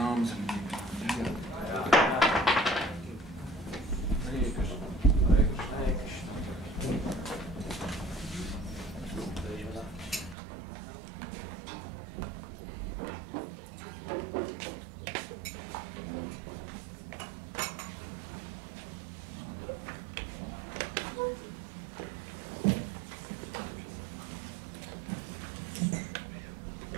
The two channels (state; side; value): drops out; left; at 10.4 s